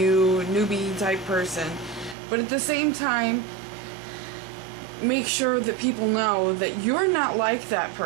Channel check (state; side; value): drops out; left; at 2.1 s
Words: type person, but at the same time make sure that people know that you're not like that